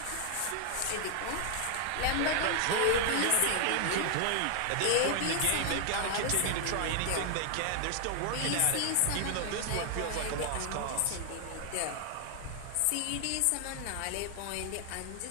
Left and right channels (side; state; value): both; different; correlation 0.00